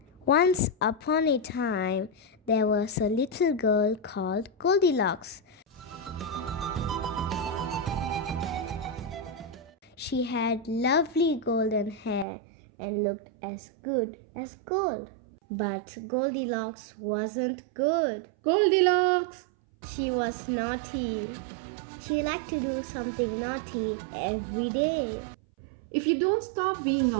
Once upon a time, there was a little girl called Goldilocks. She had lovely golden hair and looked as good as gold. But Goldilocks wasn't good. Goldilocks! She was naughty. She liked to do something naughty every day. If you don't stop being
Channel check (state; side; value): drops out; left; at 12.2 s